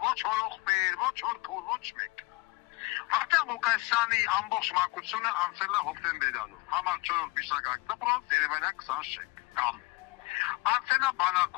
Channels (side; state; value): right; quieter; 23.7 dB